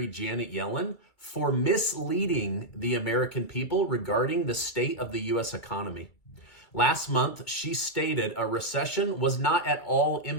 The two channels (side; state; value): right; late; 2.3 ms